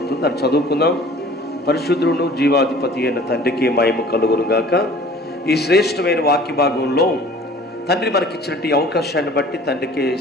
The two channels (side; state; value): both; normal; correlation 0.48